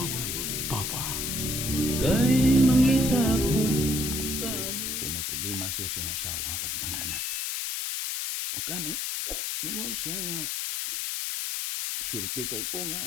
Papa. Kay mangita ko kayo. Kay may problema siya sa iyang asawa o mga anak. O kani, mingon siya nga, swerte kay ko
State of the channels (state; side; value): noise; left; hiss, 2 dB below the sound